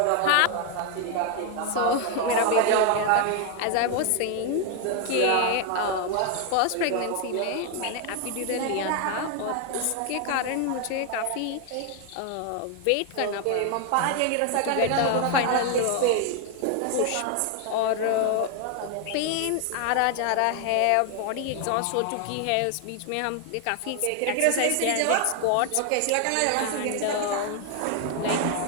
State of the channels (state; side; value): different; both; correlation 0.01